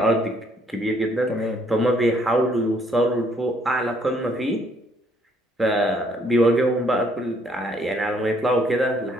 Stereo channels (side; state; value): both; normal; correlation 0.66